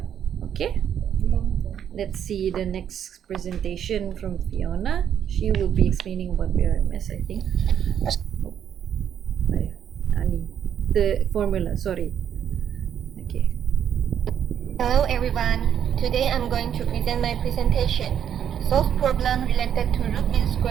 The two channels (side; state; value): left; quieter; 9.1 dB